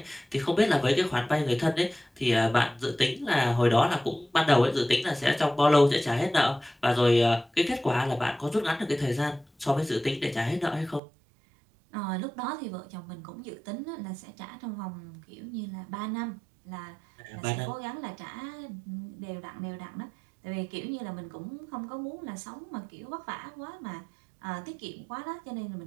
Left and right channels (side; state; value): left; drops out; at 11.0 s